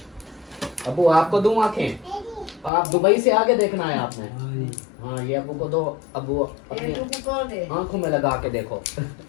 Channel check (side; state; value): right; drops out; at 2.7 s